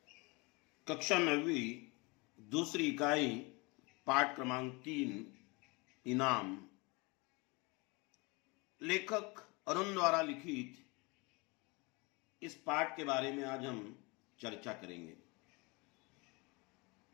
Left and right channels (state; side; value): quieter; right; 27.0 dB